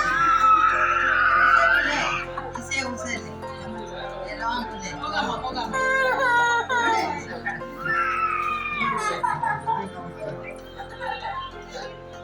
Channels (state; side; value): identical; both; correlation 1.00